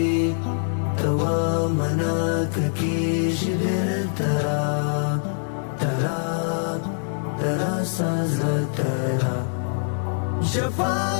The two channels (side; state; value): right; silent; digital silence